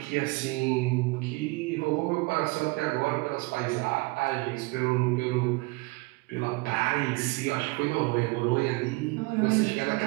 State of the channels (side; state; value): left; quieter; 24.8 dB